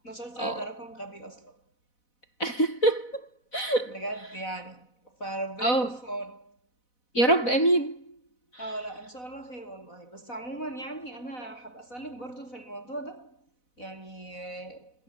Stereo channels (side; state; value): right; late; 4.0 ms